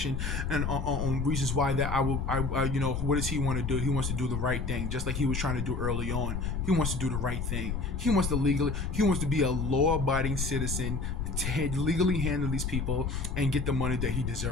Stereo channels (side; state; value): left; noise; rumble, 2 dB below the sound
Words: and on reasons why that I you know, what does he want to do? He wants to do the right thing, just like he was trying to do early on. He wants to do the right thing. He wants to be a law-abiding citizen, to legally handle these people and get the money that he